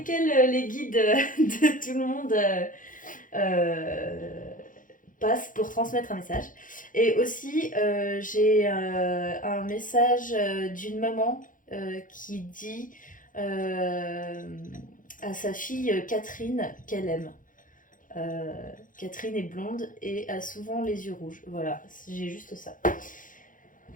les guides de tout le monde euh, passent pour transmettre un message. Et aussi, j'ai un message d'une maman qui dit à sa fille Catherine qu'elle aime. Catherine est blonde et a souvent les yeux rouges. Voilà, j'ai juste ça.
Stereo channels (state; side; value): late; right; 0.39 ms